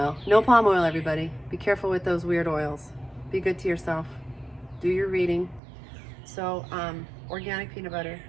No palm oil, everybody. Be careful with those weird oils. Be good to yourself. Do your reading. So, organic peanut butter.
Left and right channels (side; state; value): left; drops out; at 5.6 s